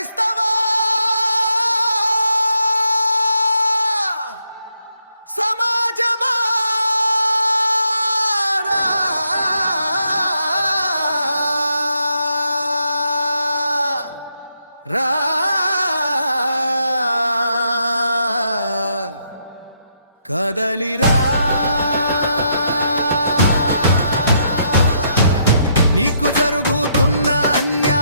సమాజమా రా కదలిరా నీకు జరుగుతున్న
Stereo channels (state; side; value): inverted; both; correlation -0.76